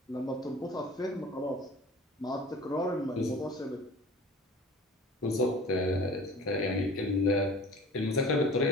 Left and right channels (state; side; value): normal; both; correlation 0.44